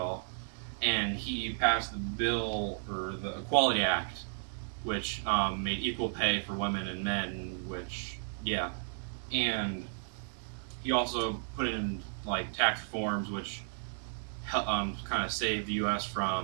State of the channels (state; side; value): silent; left; digital silence